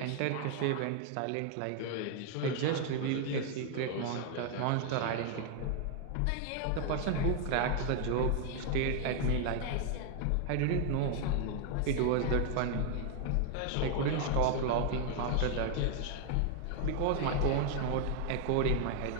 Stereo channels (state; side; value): different; both; correlation 0.00